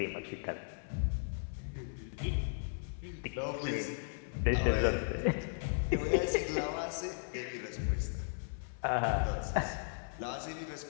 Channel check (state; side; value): silent; right; 54 dB below the other